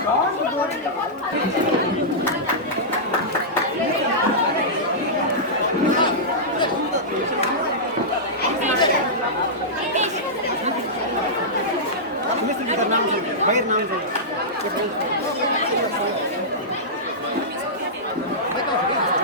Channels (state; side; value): normal; both; correlation -0.13